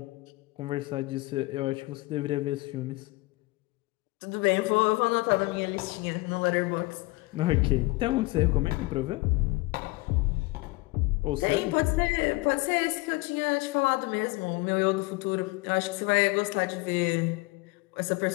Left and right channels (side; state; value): right; quieter; 23.4 dB